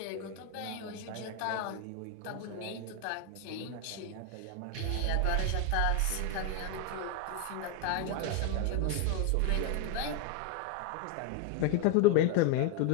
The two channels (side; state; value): both; different; correlation 0.01